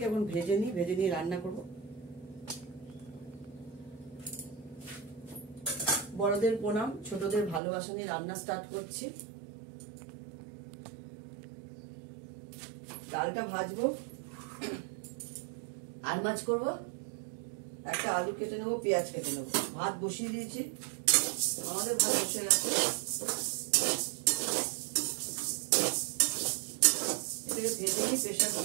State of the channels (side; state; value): left; drops out; at 7.6 s